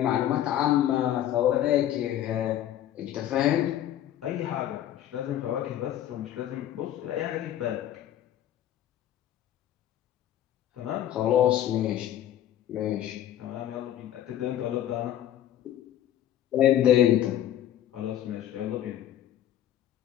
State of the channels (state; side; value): quieter; right; 11.6 dB